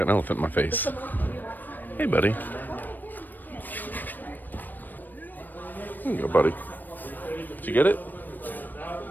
an elephant in my face. Hey, buddy. There you go, buddy. Did you get it?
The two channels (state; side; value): late; right; 0.089 ms